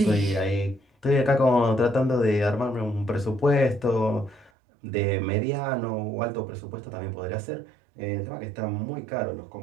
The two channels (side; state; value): left; drops out; at 4.5 s